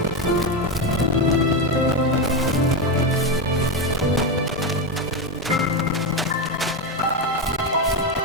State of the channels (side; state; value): both; normal; correlation 0.12